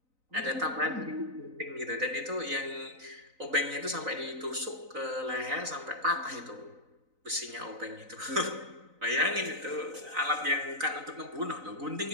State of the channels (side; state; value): left; late; 3.9 ms